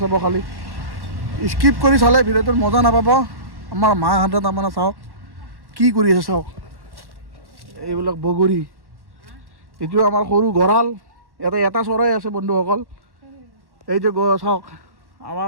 খালি স্কিপ কৰি চালে ভিডিঅ'টোৰ মজা নাপাব। আমাৰ মাহঁতে তাৰমানে চাওক কি কৰি আছে, চাওক এইবিলাক বগৰী। এইটো আমাৰ সৰু গঁৰাল, ইয়াতে এটা চৰাই আছে বন্ধুসকল। এই যে চাওক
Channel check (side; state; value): left; late; 1.1 ms